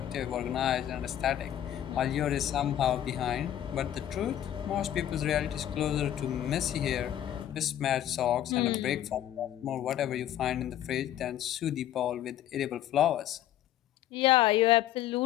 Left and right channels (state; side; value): quieter; right; 11.7 dB